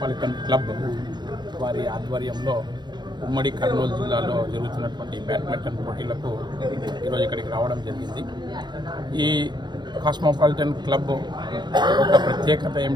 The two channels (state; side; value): late; left; 0.21 ms